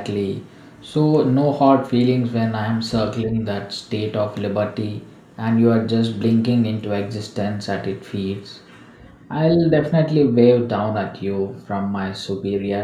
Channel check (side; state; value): both; identical; correlation 1.00